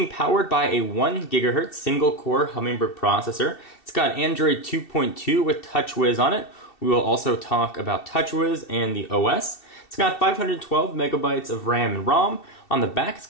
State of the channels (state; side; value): late; right; 2.7 ms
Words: powered by a 1 GHz single-core Hummingbird processor. It's got Android 2.2 with Touchwiz on it. We will also talk about Touchwiz and the OS. It's got 512 megabytes of RAM and ROM. On the back, it's